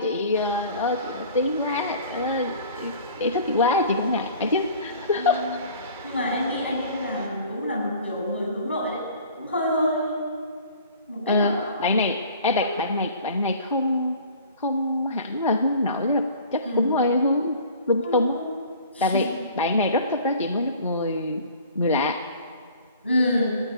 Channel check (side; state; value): both; inverted; correlation -0.47